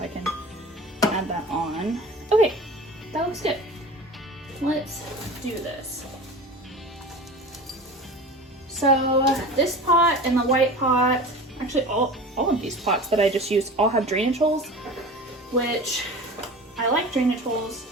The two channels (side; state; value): both; normal; correlation 0.35